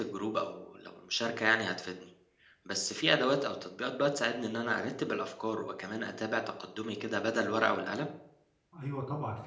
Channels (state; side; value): identical; both; correlation 1.00